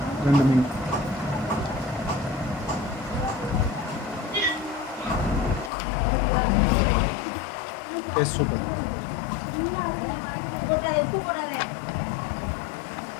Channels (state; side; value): drops out; right; at 5.7 s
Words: 2 மீன் டேஸ்ட் சூப்பர்.